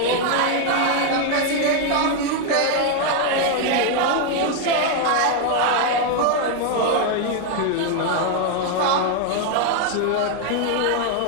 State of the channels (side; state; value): both; different; correlation 0.01